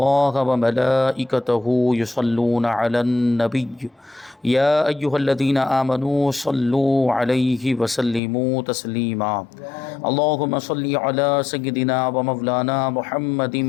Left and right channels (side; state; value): right; drops out; at 8.2 s